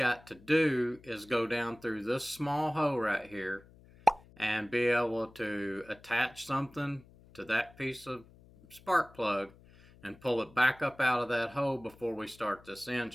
to do is go down through this small hole right here and be able to attach something to that piece of spark plug and pull it back up out of that hole before we start this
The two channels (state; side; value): noise; left; hum, 24 dB below the sound